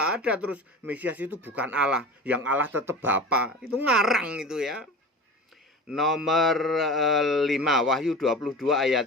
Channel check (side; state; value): both; normal; correlation 0.33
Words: ada, terus Mesias itu bukan Allah, yang Allah tetap Bapa. Itu ngarang itu ya. Nomor 5, Wahyu 22